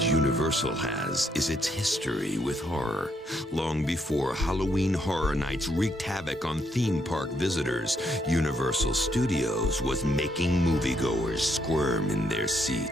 Universal has is its history with horror. Long before Halloween Horror Nights wreaked havoc on theme park visitors, Universal Studios was making moviegoers squirm in their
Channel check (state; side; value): normal; both; correlation 0.75